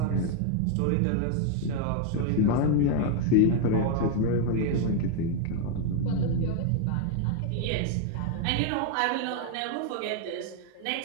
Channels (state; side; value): different; both; correlation 0.00